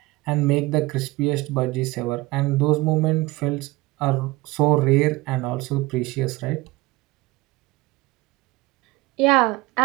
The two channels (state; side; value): quieter; left; 20.8 dB